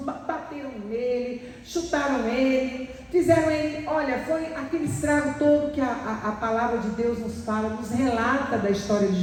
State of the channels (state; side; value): identical; both; correlation 1.00